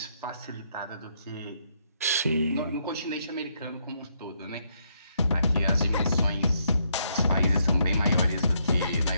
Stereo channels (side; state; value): both; inverted; correlation -0.74